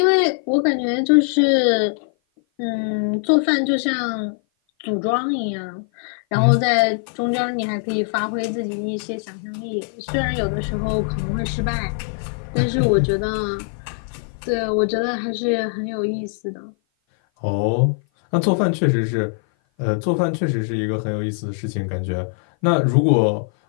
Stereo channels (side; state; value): right; silent; 56 dB below the other